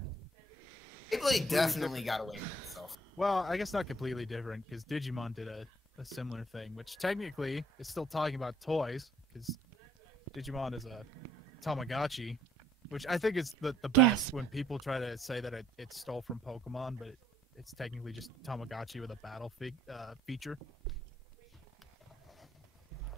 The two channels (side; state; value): both; normal; correlation 0.63